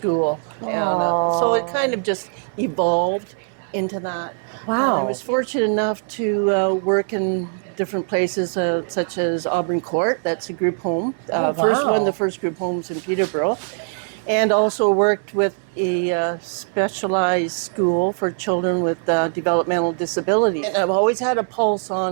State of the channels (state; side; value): silent; left; 65 dB below the other